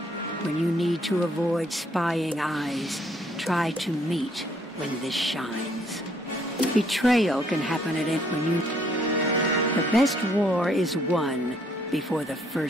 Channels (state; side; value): normal; both; correlation 0.66